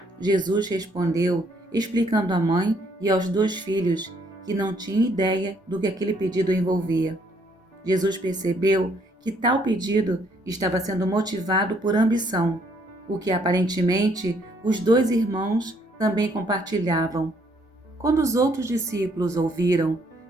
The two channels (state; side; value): normal; both; correlation 0.67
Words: Jesus respondeu, explicando à mãe e aos 2 filhos que não tinha ideia do que aquele pedido envolvia. Jesus percebeu que tal pedido estava sendo motivado por ambição, o que aparentemente os 2 irmãos também compartilhavam. Quando os outros discípulos ouviram,